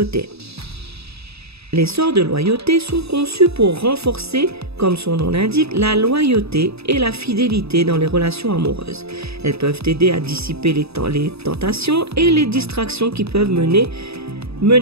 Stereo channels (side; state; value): left; late; 0.78 ms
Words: Les sorts de loyauté sont conçus pour renforcer, comme son nom l'indique, la loyauté et la fidélité dans les relations amoureuses. Elles peuvent aider à dissiper les tentations et les distractions qui peuvent